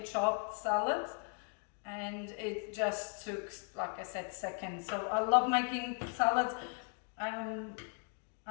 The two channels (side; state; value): right; quieter; 39.7 dB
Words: salad. And it just took, like I said, seconds. So I love making salads.